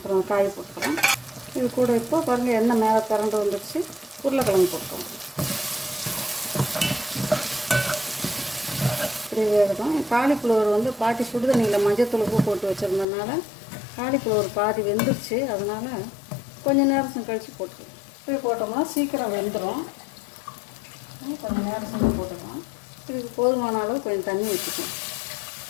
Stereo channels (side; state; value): right; drops out; at 13.1 s